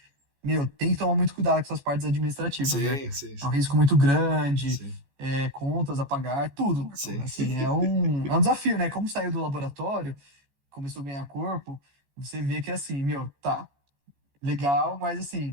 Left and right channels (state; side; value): late; left; 14 ms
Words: tem que tomar muito cuidado com essas partes administrativas, né? Sim. É um risco muito grande, contas a pagar, tudo, Marcão. Assim, é um desafio, né? Como saiu do laboratório, começou a ganhar corpo, você vê que, assim, tá, legal, mas,